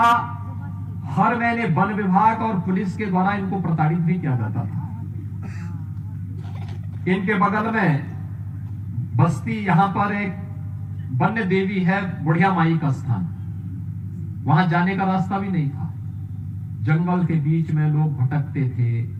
हर महीने वन विभाग और पुलिस के द्वारा इनको प्रताड़ित भी किया जाता था। इनके बगल में बस्ती, यहां पर एक वन्य देवी है, बुढ़िया माई का स्थान, वहां जाने का रास्ता भी नहीं था। जंगल के बीच में लोग भटकते थे,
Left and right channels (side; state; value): both; identical; correlation 1.00